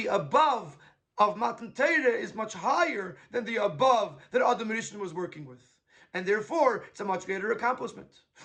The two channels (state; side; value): identical; both; correlation 1.00